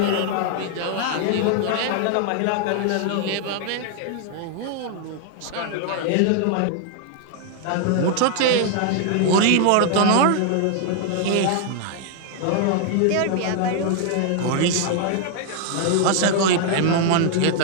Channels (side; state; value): both; different; correlation 0.00